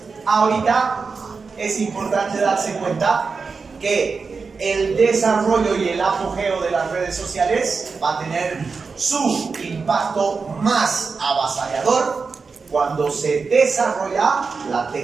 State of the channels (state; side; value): quieter; left; 4.8 dB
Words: Ahorita es importante darse cuenta que el desarrollo y el apogeo de las redes sociales va a tener su impacto más avasallador cuando se desarrolla la